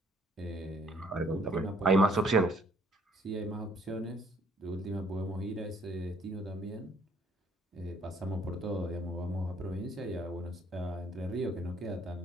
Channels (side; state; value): both; normal; correlation 0.63